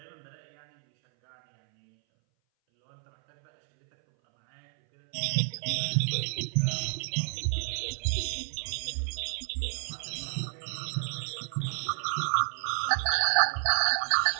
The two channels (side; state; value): left; silent; 58 dB below the other